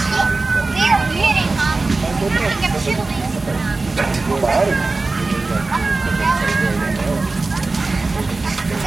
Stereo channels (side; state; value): left; quieter; 3.5 dB